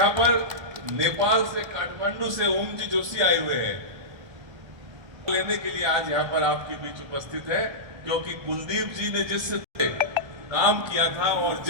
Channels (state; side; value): late; left; 1.3 ms